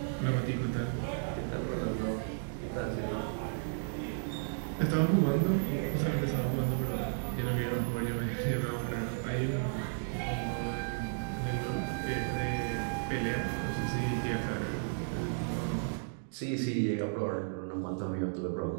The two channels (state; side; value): silent; left; digital silence